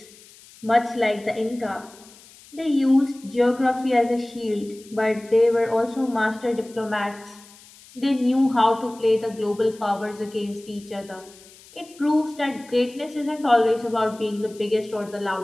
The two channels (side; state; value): left; noise; hiss, 23 dB below the sound